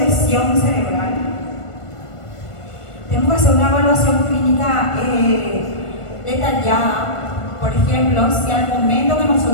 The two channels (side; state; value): right; late; 1.5 ms